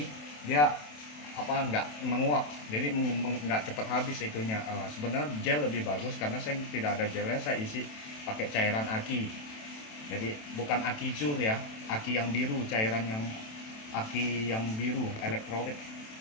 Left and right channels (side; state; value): right; late; 27 ms